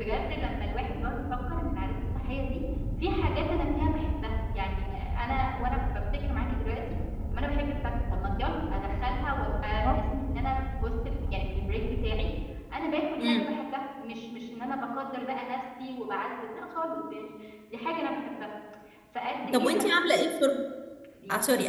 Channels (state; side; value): identical; both; correlation 1.00